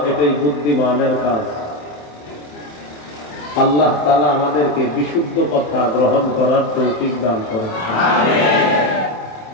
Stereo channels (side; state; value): right; late; 27 ms